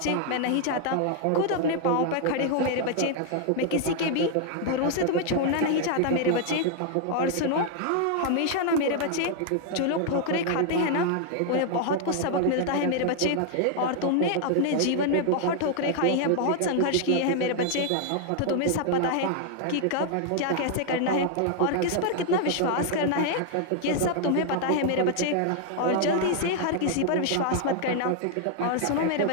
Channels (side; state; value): both; different; correlation 0.00